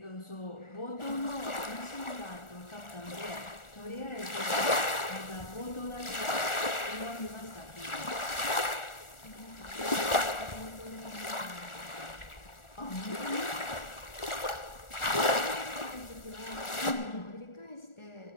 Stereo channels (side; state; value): right; late; 1.4 ms